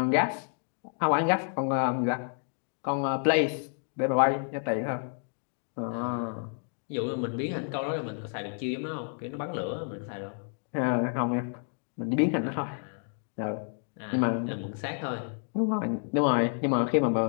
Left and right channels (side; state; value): right; silent; 58 dB below the other